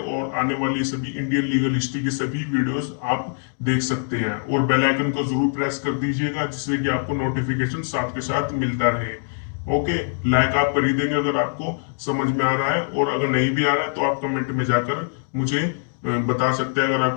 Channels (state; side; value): silent; right; digital silence